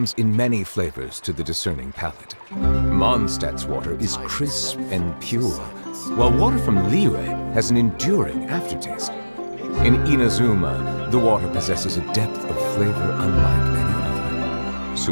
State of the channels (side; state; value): both; inverted; correlation -1.00